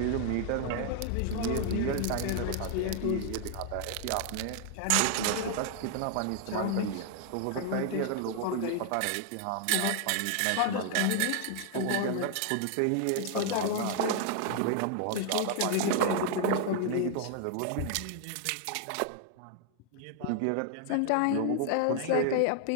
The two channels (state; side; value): different; both; correlation 0.00